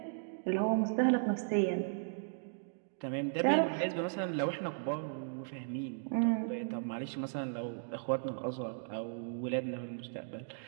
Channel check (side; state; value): left; silent; digital silence